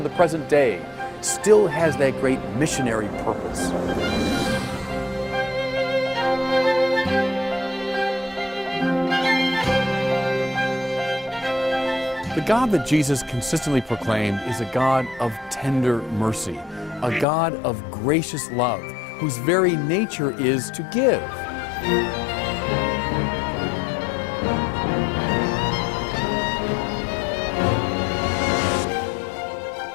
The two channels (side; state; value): right; drops out; at 17.2 s